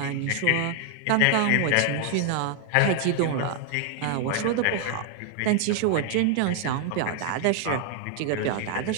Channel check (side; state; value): both; different; correlation 0.00